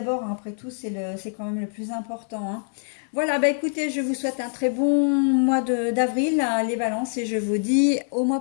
hein, après tout, c'est quand même le plus important, hein. Voilà, bah écoutez, je vous souhaite un très bon mois d'avril, les balances, et je vous dis au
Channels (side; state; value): right; silent; digital silence